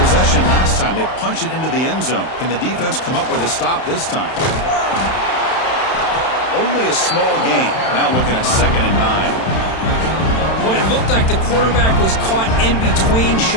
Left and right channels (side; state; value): right; late; 31 ms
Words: possession last time. They punch it into the end zone. Can the defense come up with a stop this time? Only a small gain. Now looking at 2nd and 9. Boy, it looked like the quarterback was caught in between.